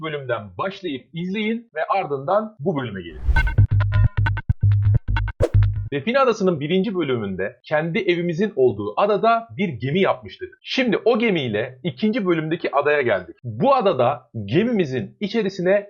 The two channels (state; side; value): identical; both; correlation 1.00